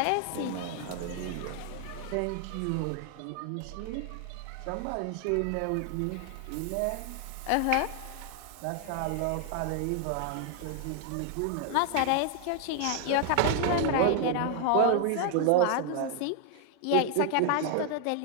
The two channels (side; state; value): both; different; correlation 0.00